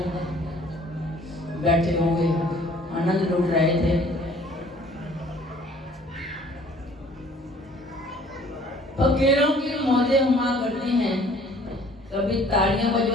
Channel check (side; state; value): both; normal; correlation 0.55